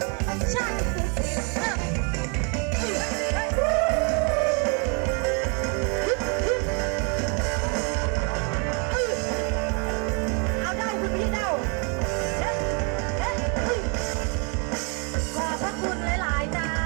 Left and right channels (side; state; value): left; quieter; 36.3 dB